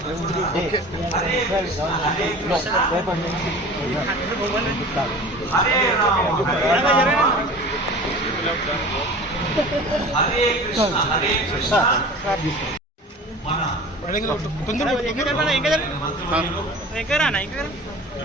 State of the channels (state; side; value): normal; both; correlation 0.39